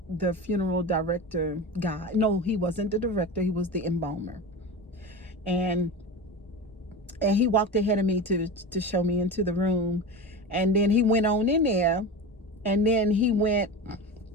the funeral director guy, no, he wasn't the director, he was the embalmer. And he walked ahead of me to show me into the room. And then he went on in there, and then he went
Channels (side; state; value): both; normal; correlation 0.27